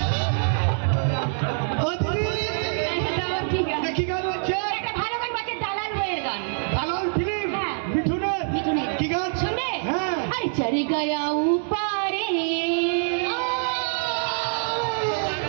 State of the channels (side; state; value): left; silent; digital silence